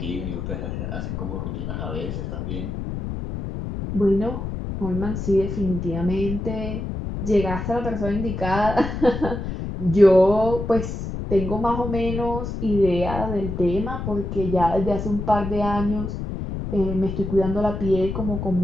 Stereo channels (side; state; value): left; noise; rumble, 5 dB below the sound